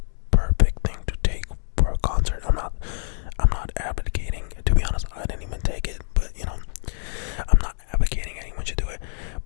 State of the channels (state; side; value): silent; right; 59 dB below the other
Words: perfect thing to take for a concert. I'm not advocating. To be honest, I didn't even take it, but I'm not advocating anyone should do it.